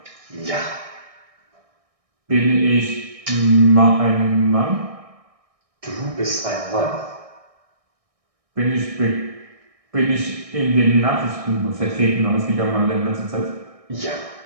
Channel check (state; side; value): late; left; 1.6 ms